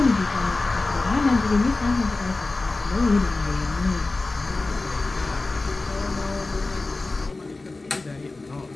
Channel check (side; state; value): right; quieter; 3.3 dB